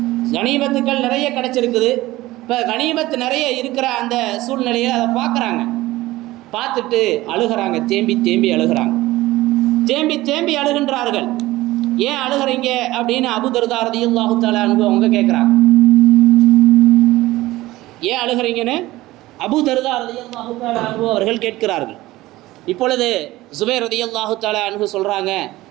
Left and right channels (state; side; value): quieter; left; 17.8 dB